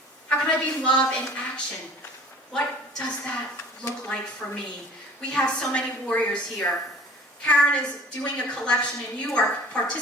How can I be love in action? What does that look like for me? We have so many warriors here. Karen is doing a collection, and you are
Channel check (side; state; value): both; normal; correlation 0.47